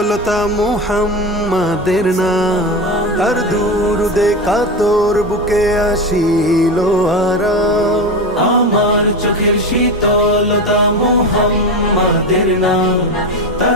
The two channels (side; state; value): both; normal; correlation 0.21